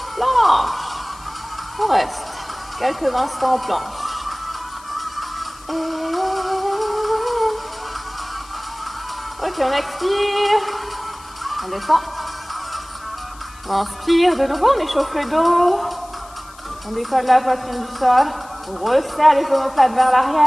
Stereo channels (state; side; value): noise; left; hiss, 23 dB below the sound